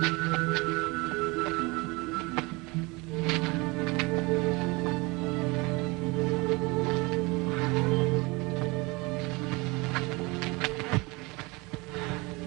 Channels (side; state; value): left; quieter; 25.7 dB